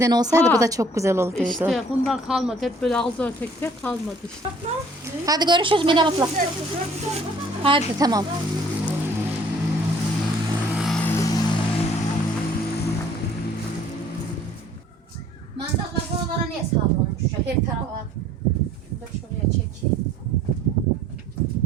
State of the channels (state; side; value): normal; both; correlation 0.56